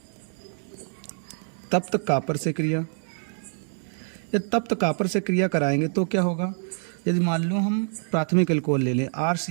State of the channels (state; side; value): silent; left; 61 dB below the other